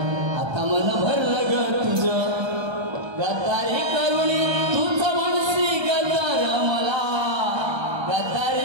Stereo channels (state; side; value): late; left; 1.3 ms